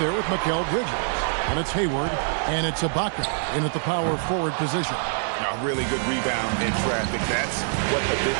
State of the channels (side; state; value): left; silent; digital silence